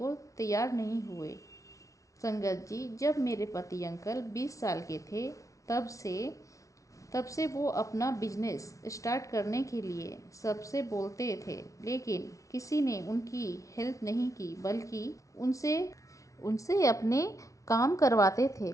तैयार नहीं हुए। संगत जी, जब मेरे पति अंकल 20 साल के थे तब से वो अपना बिजनेस स्टार्ट करने के लिए सबसे बोलते थे, लेकिन किसी ने उनकी हेल्प नहीं की, बल्कि उनसे अपने काम करवाते थे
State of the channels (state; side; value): late; right; 0.16 ms